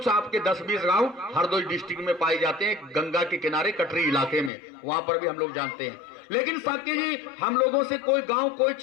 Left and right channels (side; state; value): right; drops out; at 4.5 s